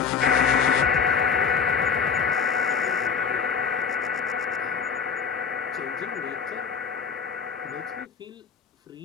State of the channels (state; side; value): quieter; right; 6.2 dB